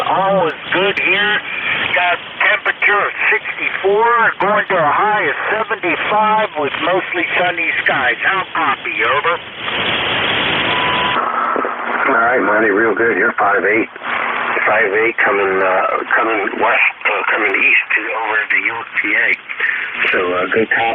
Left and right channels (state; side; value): identical; both; correlation 1.00